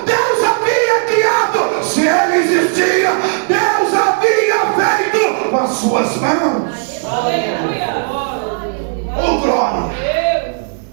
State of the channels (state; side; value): silent; left; 70 dB below the other